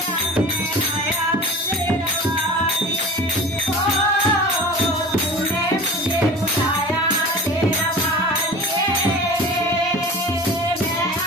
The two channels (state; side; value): normal; both; correlation 0.37